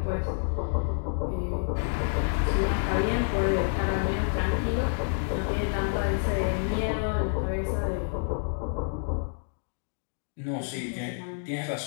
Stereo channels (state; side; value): silent; right; digital silence